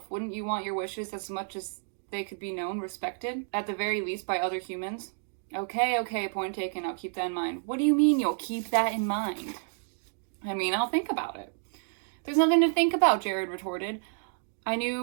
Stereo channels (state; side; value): silent; left; digital silence